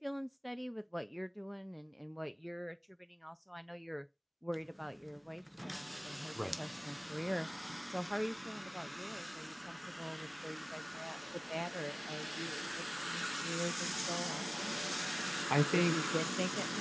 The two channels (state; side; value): identical; both; correlation 1.00